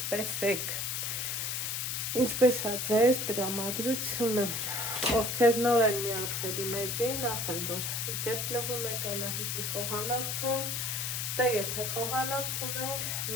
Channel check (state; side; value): noise; left; hiss, 1 dB below the sound